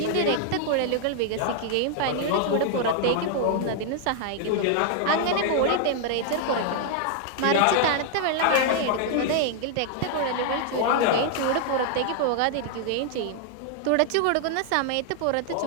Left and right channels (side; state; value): both; different; correlation 0.00